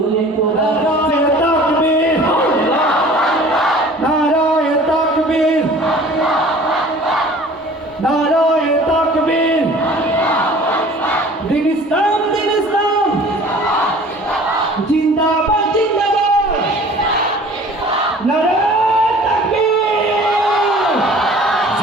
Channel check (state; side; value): normal; both; correlation 0.47